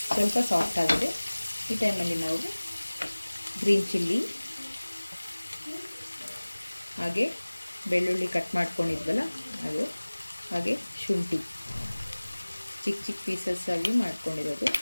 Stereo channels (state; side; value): inverted; both; correlation -1.00